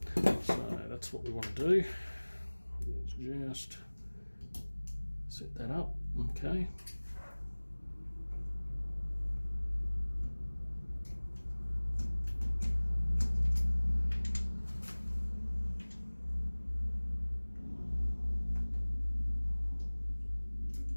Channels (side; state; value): both; inverted; correlation -1.00